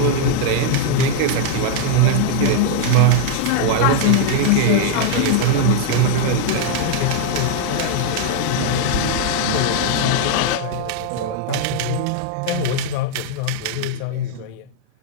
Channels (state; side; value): different; both; correlation 0.00